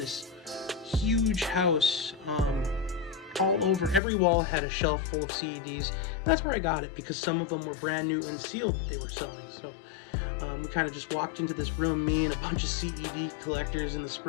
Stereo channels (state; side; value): drops out; right; at 4.0 s